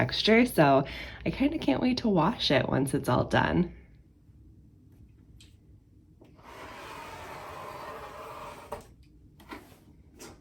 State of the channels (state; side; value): identical; both; correlation 1.00